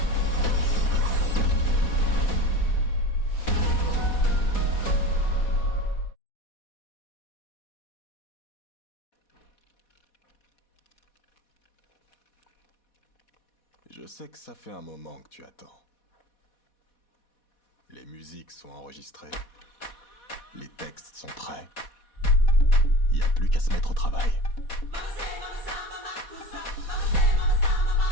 Je sais que ça fait un moment que tu attends. Les musiques sont enregistrées. Les textes sont prêts. Y a plus qu'à se mettre au travail.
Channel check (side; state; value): right; late; 4.1 ms